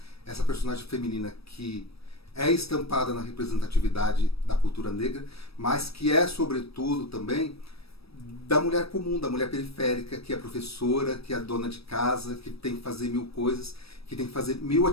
essa personagem feminina que é estampada na representatividade da cultura negra, mas que é, sobretudo, também da mulher comum, da mulher periférica, que é professora, que é dona de casa, que tem que fazer 1000 coisas, que tem que fazer 1000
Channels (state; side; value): late; right; 0.77 ms